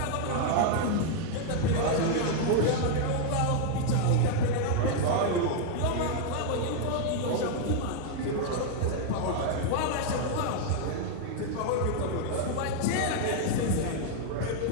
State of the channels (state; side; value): different; both; correlation 0.00